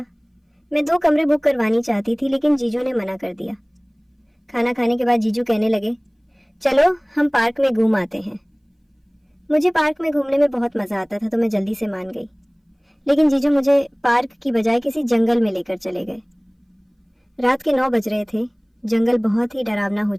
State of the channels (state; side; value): identical; both; correlation 1.00